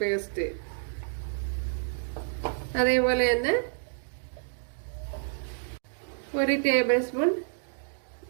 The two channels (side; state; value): left; silent; digital silence